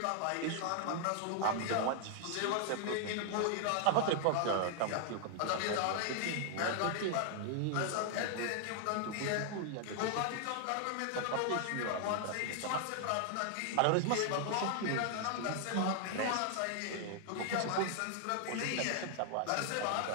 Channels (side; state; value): both; different; correlation 0.00